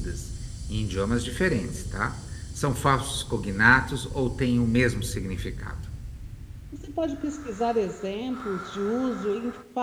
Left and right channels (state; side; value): identical; both; correlation 1.00